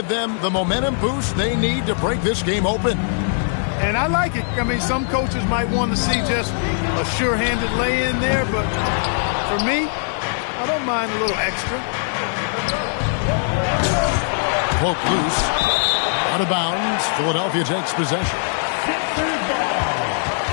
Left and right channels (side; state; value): right; silent; digital silence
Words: them the momentum boost they need to break this game open. And I like it. I mean, some coaches might want to see just a sure-handed lay-in there, but for me, I don't mind a little extra. Poke loose. Out of bounds. Philadelphia takes possession.